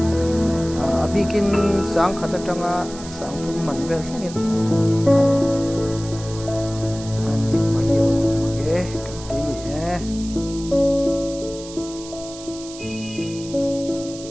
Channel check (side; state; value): right; noise; hiss, 15 dB below the sound